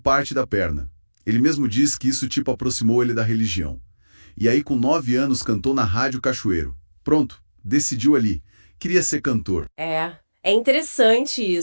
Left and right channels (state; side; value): inverted; both; correlation -1.00